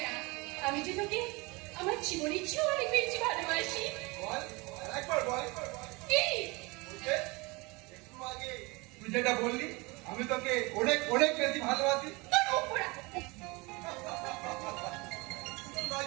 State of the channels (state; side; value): quieter; left; 25.5 dB